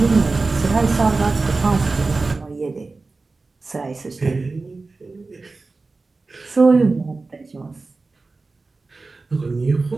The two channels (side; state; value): left; quieter; 3.7 dB